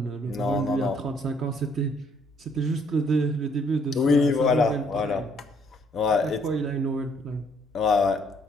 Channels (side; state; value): both; normal; correlation 0.66